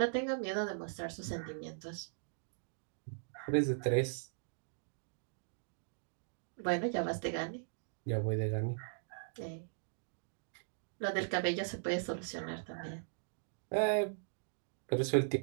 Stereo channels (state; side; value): silent; left; digital silence